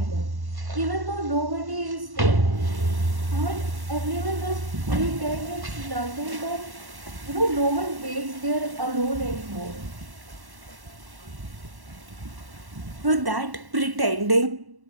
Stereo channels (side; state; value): left; late; 1.1 ms